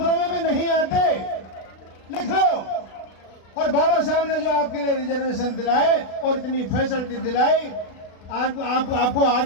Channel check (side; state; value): right; late; 36 ms